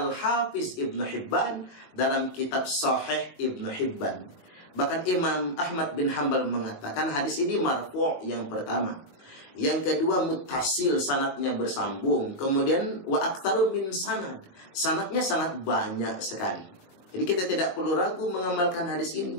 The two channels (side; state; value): right; late; 21 ms